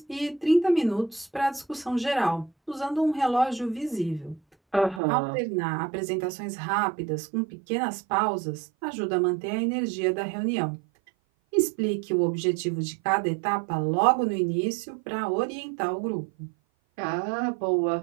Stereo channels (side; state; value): left; drops out; at 5.0 s